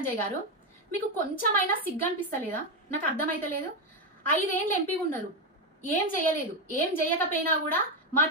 గారు, మీకు కొంచెమైనా సిగ్గు అనిపిస్తలేదా? నాకు అర్థమైతలేదు. 5 ఏళ్ళు ఎంపీ ఉన్నారు, ఏం చేయలేదు. ఏం చేయకపోయినా కూడా మా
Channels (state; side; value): normal; both; correlation 0.08